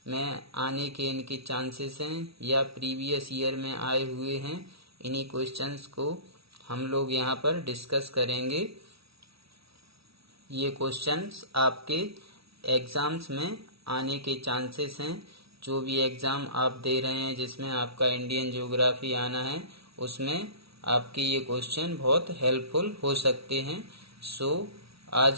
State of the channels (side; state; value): left; late; 0.76 ms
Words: में आने के इनके चांसेस हैं या प्रीवियस ईयर में आए हुए हैं, इन्हीं क्वेश्चंस को हम लोग यहाँ पर डिस्कस करेंगे। ये क्वेश्चंस आपके एग्ज़ाम्स में आने के चांसेस हैं। जो भी एग्ज़ाम आप दे रहे हैं जिसमें आपका इंडियन ज्योग्राफी आना है, उसमें आपके ये क्वेश्चन बहुत हेल्पफुल हो सकते हैं। सो